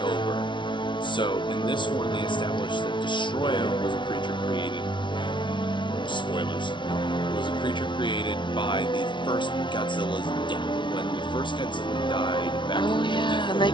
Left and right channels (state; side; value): late; right; 0.23 ms